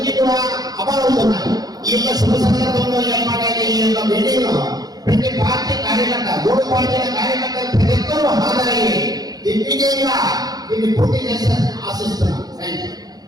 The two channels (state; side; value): late; left; 0.19 ms